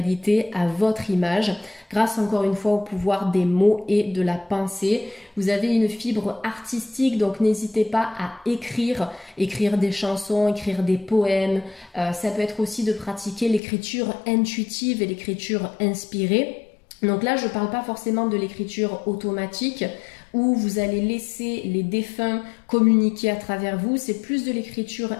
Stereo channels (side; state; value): right; drops out; at 13.6 s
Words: à votre image grâce encore une fois au pouvoir des mots et de la pensée. Vous avez une fibre artistique, donc n'hésitez pas à écrire des chansons, écrire des poèmes. Ça peut être aussi de pratiquer l'écriture intuitive et l'écriture inspirée. Donc là, je ne parle pas forcément de l'écriture automatique où vous allez laisser les défunts communiquer à travers vous. C'est plus de l'écriture